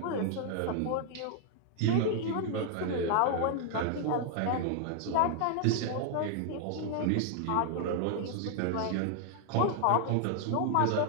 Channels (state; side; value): different; both; correlation 0.00